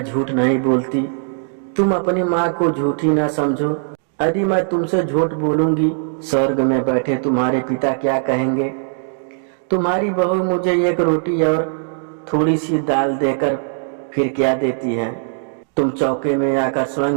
झूठ नहीं बोलती, तुम अपनी माँ को झूठी न समझो। यदि मैं तुमसे झूठ बोलूंगी, स्वर्ग में बैठे तुम्हारे पिता क्या कहेंगे? तुम्हारी बहू मुझे एक रोटी और थोड़ी सी दाल देकर फिर क्या देती है? तुम चौके में आकर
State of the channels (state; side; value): silent; left; digital silence